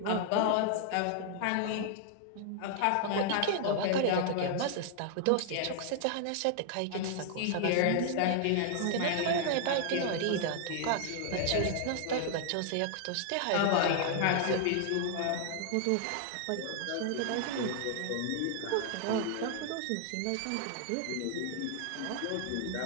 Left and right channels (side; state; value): both; different; correlation 0.00